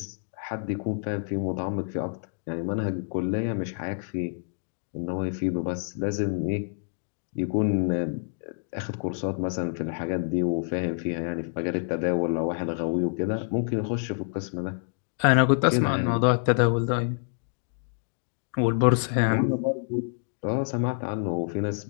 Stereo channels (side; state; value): right; silent; digital silence